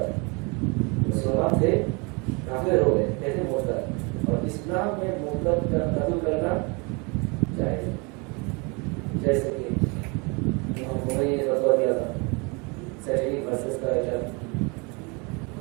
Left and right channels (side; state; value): left; quieter; 30.2 dB